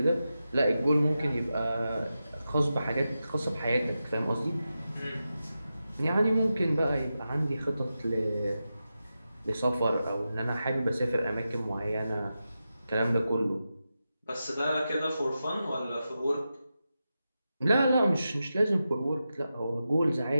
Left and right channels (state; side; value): inverted; both; correlation -0.91